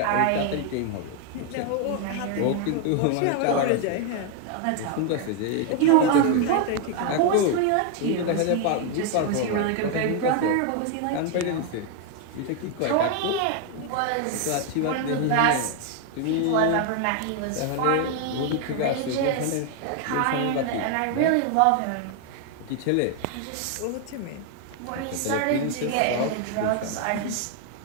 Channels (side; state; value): both; different; correlation 0.00